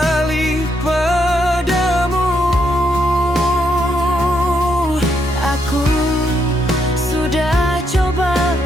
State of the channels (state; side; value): normal; both; correlation 0.77